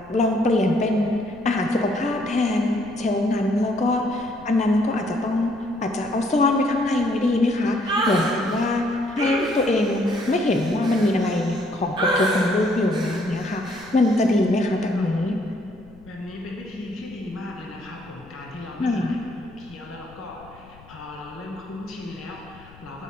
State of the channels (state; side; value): noise; left; rumble, 23 dB below the sound